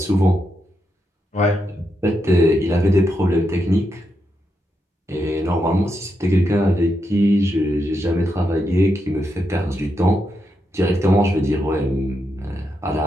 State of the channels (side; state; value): both; normal; correlation 0.83